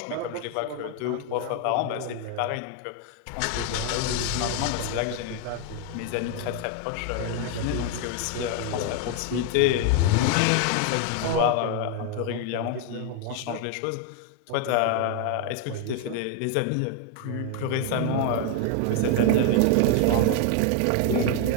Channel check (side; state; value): both; different; correlation 0.01